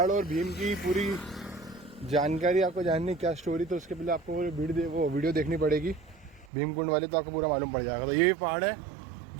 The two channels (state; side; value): drops out; left; at 6.5 s